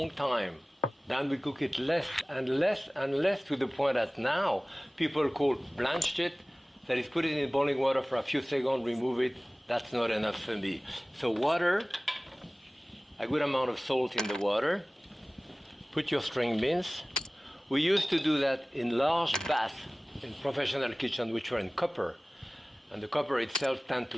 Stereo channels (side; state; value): both; normal; correlation 0.98